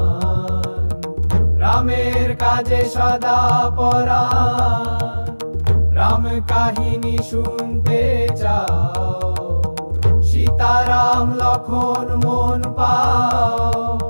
রামের কাজে সদা পরাণ। রাম কাহিনী শুনতে চাও, সীতারাম লক্ষণ মন পাও।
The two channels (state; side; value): inverted; both; correlation -1.00